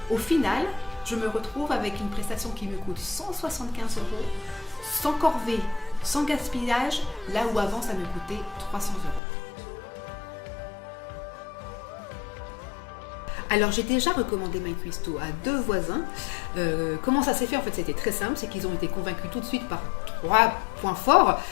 au final, je me retrouve avec une prestation qui me coûte 175 €, sans corvée, sans gaspillage, là où avant ça me coûtait 300 €. Alors j'ai déjà recommandé MyCuisto à 2 voisins. Comment ça s'est fait? En fait c'était très simple, c'est qu'ils ont été convaincus tout de suite par 3 points forts.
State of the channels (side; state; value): right; drops out; at 9.2 s